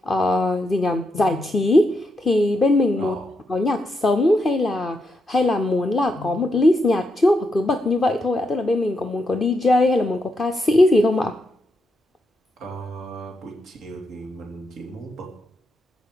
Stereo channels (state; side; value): normal; both; correlation 0.83